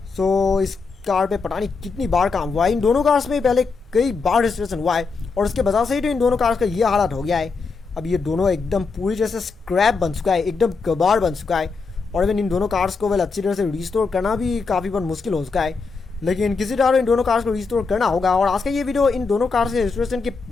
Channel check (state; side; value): quieter; right; 4.6 dB